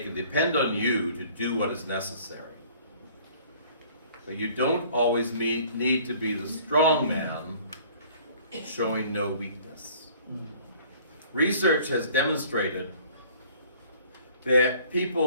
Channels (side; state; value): both; inverted; correlation -0.53